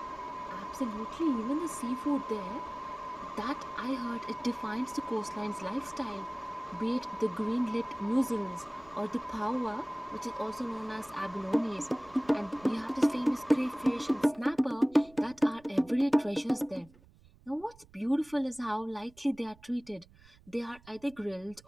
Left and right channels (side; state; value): right; noise; rumble, 25 dB below the sound